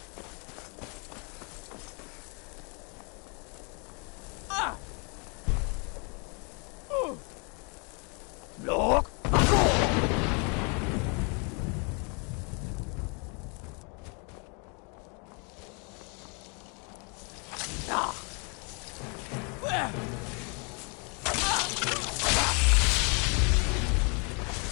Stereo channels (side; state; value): right; quieter; 34.7 dB